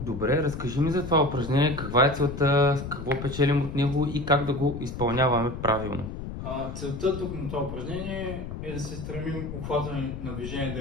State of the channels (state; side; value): noise; left; rumble, 8 dB below the sound